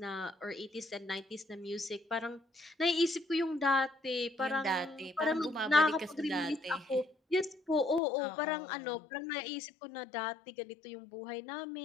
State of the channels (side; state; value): right; drops out; at 8.0 s